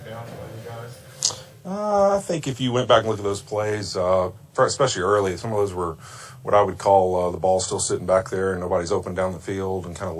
by you guys? I think if you went back and look at those plays, especially early, some of those were what I would call the ball still sitting back there and nobody's open down the field and kind of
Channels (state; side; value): identical; both; correlation 1.00